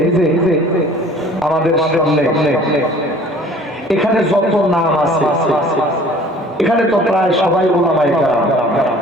যে আমাদের সামনে এখানে যত নাম আছে, এখানে তো প্রায় সবাই উলামায়ে কেরাম।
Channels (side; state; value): both; normal; correlation 0.50